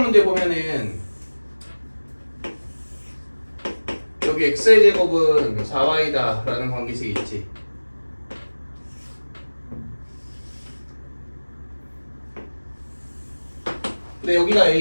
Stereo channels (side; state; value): both; inverted; correlation -1.00